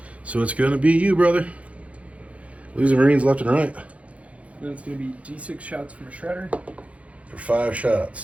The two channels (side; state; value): left; late; 0.064 ms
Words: So it's going to be you, brother. Losing Marines left and right. Then it's going to be D6 shots from a Shredder. For 5